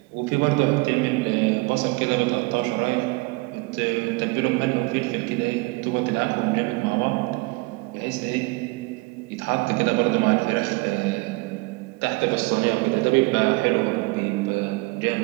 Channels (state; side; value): quieter; left; 25.0 dB